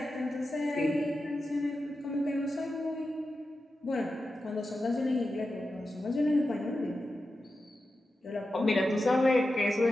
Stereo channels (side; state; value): both; normal; correlation 0.91